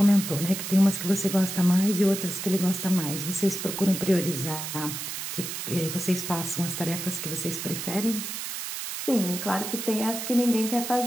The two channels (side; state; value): right; noise; hiss, 6 dB below the sound